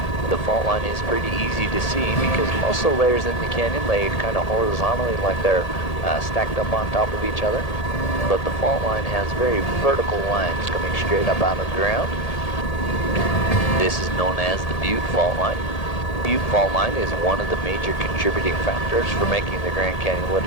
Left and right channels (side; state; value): right; late; 1.8 ms